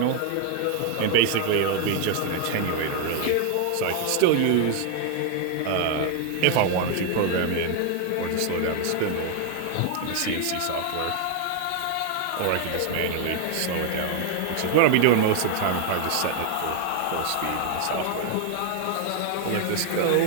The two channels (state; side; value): different; both; correlation 0.00